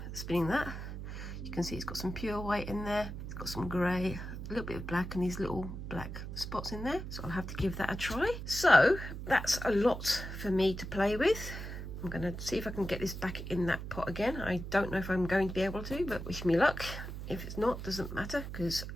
spinning that. You can see it's got some pure white in there. It's got some grey, a little bit of black and these little black spots in there. So I'll have to give that a try. So that's a lot for me to play with. I'm going to see if I can get this back in that pot again. I don't know if I'm going to be able to, but wish me luck. If it's not, doesn't matter, because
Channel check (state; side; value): noise; right; hum, 7 dB below the sound